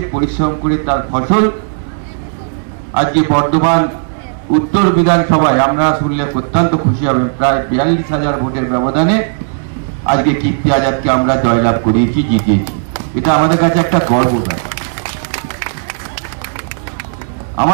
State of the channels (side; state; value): left; silent; digital silence